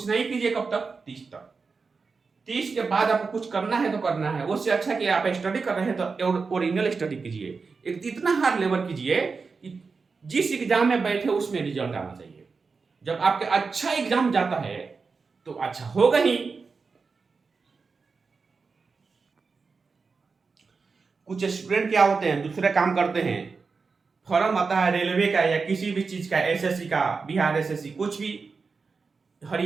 नहीं कीजिए कब तक? 30 तक। 30 के बाद आपको कुछ करना है तो करना है। उससे अच्छा कि आप स्टडी कर रहे हैं तो ओरिजिनल स्टडी कीजिए, एक इतना हार्ड लेबर कीजिए कि जिस एग्जाम में बैठे उसमें रिजल्ट आना चाहिए। जब आपके अच्छा एग्जाम जाता है तो अच्छा होगा ही। कुछ स्टूडेंट क्या होते हैं, दूसरे काम करते हैं, फॉर्म आता है रेलवे का या किसी भी चीज का, एसएससी का, बिहार एसएससी, कुछ भी,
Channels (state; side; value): quieter; left; 4.7 dB